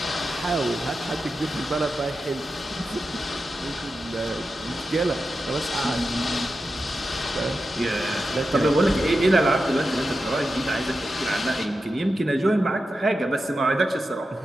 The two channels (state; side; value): normal; both; correlation 0.90